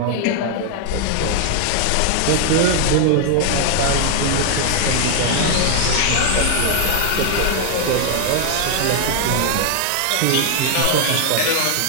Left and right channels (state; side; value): different; both; correlation 0.00